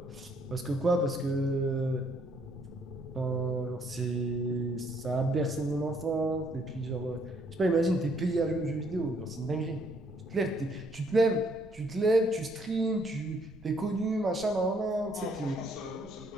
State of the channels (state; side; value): noise; right; rumble, 22 dB below the sound